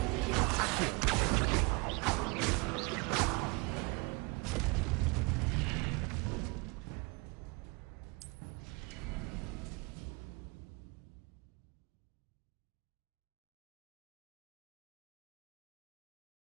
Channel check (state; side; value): quieter; left; 28.2 dB